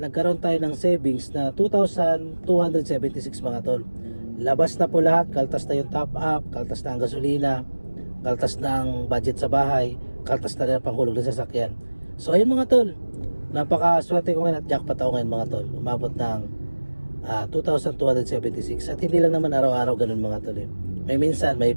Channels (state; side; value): inverted; both; correlation -1.00